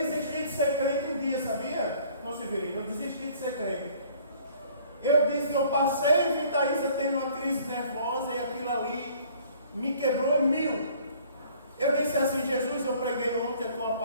de ser crente um dia, sabia? Não se Severino, eu desisti de ser crente. Eu passei e vi Thaisa tendo uma crise nervosa e aquilo ali me quebrou em mil. Eu disse assim: Jesus, eu preguei ontem a tua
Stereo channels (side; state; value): both; inverted; correlation -0.55